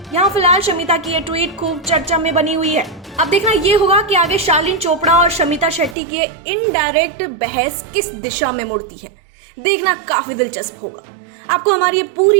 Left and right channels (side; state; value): left; drops out; at 6.0 s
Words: यहाँ फिलहाल शमिता की ये ट्वीट खूब चर्चा में बनी हुई है। अब देखना ये होगा कि आगे शालीन चोपड़ा और शमिता शेट्टी की इनडायरेक्ट बहस किस दिशा में मुड़ती है। देखना काफी दिलचस्प होगा। आपको हमारी ये